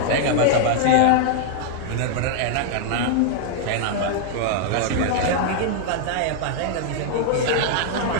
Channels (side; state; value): both; different; correlation -0.01